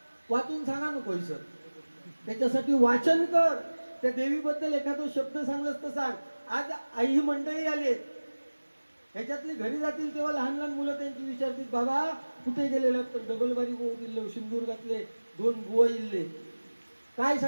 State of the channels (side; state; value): both; inverted; correlation -1.00